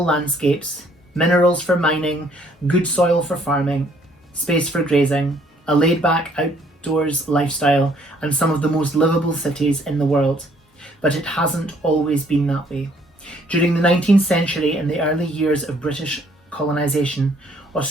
landscapes, minerals for mining, good soil for farming, space for grazing, a laid-back outdoors lifestyle, and some of the most livable cities in the world. But it hasn't always been that way. During the 19th century and the early years of British colonisation,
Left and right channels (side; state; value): both; normal; correlation 0.63